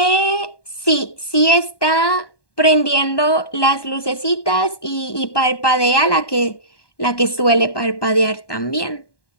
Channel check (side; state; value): right; late; 1.2 ms